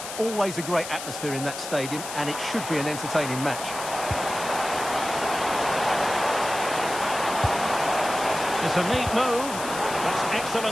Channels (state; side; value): noise; left; hiss, 9 dB below the sound